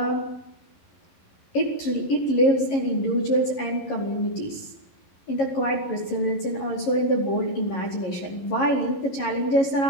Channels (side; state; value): right; late; 11 ms